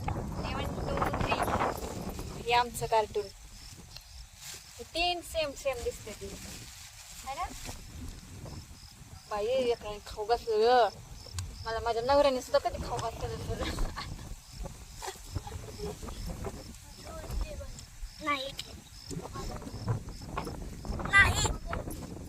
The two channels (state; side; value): identical; both; correlation 1.00